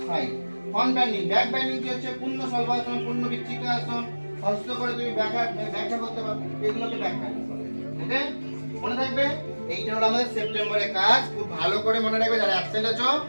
side. Front bending, back bending কি হচ্ছে? পূর্ণ সর্বাসন, পূর্ণ বিচ্ছিকাসন, হস্ত করে তুমি ব্যাখ্যা করতে পারো। এগুলোকে ব্যাক বেন্ডিং বলে। ওকে, মনে থাকবে? এইটা হলো আমাদের সেপ্টেম্বরের কাজ। খুব ভালো করে মনে রাখবে। যারা অ্যাবসেন্ট আছো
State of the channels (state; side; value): inverted; both; correlation -1.00